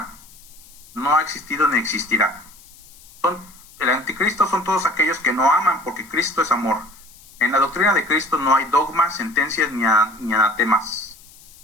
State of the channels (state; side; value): noise; left; hiss, 23 dB below the sound